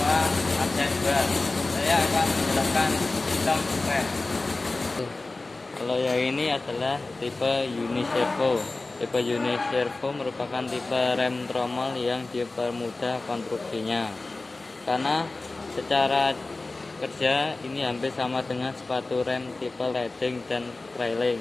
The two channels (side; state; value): right; quieter; 3.3 dB